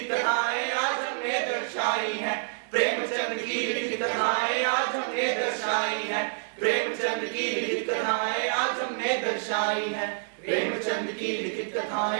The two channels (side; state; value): left; silent; 60 dB below the other